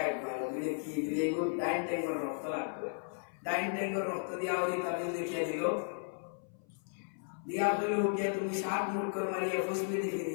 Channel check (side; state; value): right; silent; 54 dB below the other